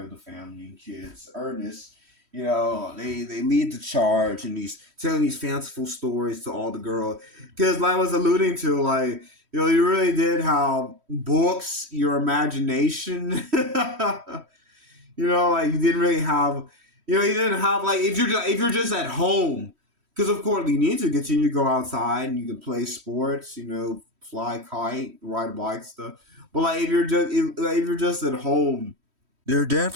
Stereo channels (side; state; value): left; late; 3.1 ms